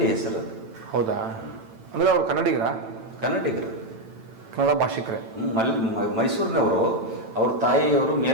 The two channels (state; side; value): late; left; 8.9 ms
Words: ಹೆಸರು ಅದು. ಹೌದಾ? ಅಂದರೆ ಅವ್ರು ಕನ್ನಡಿಗರು, ಕನ್ನಡ ಭಾಷಿಕರೇ. ಮೈಸೂರಿನವರು. ಅವ್ರ ತಾಯಿಯವರು